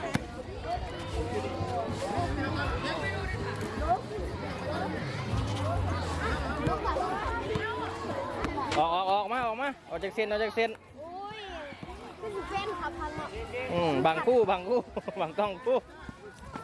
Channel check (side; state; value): both; identical; correlation 1.00